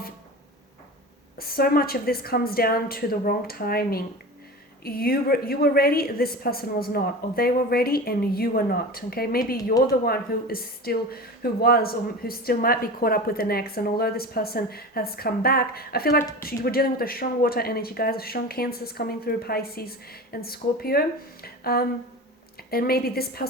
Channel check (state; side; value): normal; both; correlation 0.31